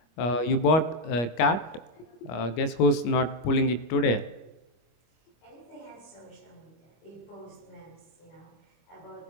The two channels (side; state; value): right; late; 25 ms